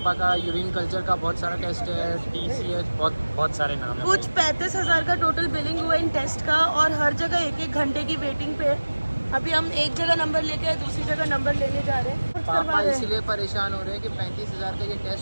का यूरिन कल्चर का बहुत सारा टेस्ट है, TCH, बहुत सारे नाम है। कुछ 35,000 का टोटल बिलिंग हुआ इन टेस्ट का और हर जगह 1-1 घंटे की वेटिंग पे है। अभी हम एक जगह नंबर लेके आए, दूसरी जगह नंबर लेने जा रहे हैं। पापा इसलिए परेशान हो रहे हैं कि 35,000 का ये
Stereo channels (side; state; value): both; inverted; correlation -1.00